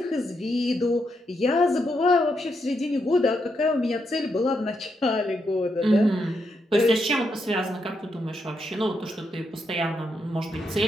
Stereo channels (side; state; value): both; normal; correlation 0.81